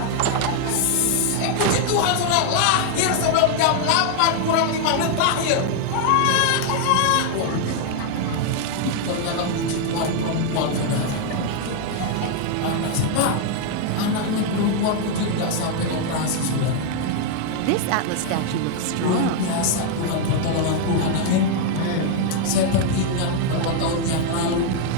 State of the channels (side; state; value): both; different; correlation 0.00